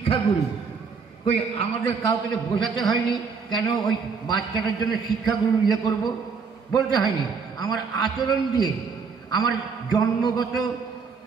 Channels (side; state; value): left; quieter; 5.4 dB